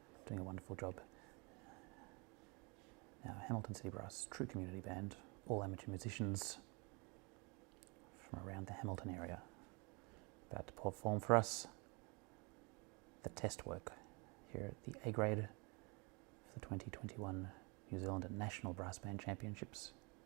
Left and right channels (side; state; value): left; quieter; 30.6 dB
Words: doing a wonderful job. Now, Hamilton City Brass, true community band, all amateur musicians from around the Hamilton area, about to perform for us the test work here at the A grade for the 2021 New Zealand National Brass Band Championships